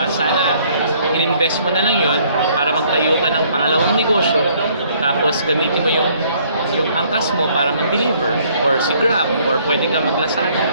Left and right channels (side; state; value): both; inverted; correlation -0.63